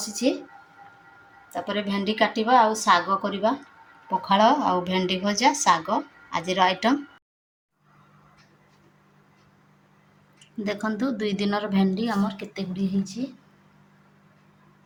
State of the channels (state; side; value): identical; both; correlation 1.00